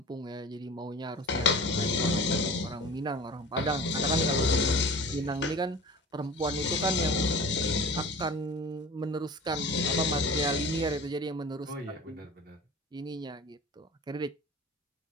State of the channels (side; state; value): both; normal; correlation 0.38